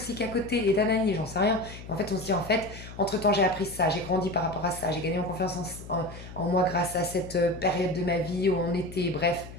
à côté et d'anani, j'en sais rien. Et en fait, on se dit, en fait, entre-temps, j'ai appris ça, j'ai grandi par rapport à ça, j'ai gagné en confiance en moi grâce à cette période de ma vie où on était, bref.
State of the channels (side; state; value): left; noise; hum, 14 dB below the sound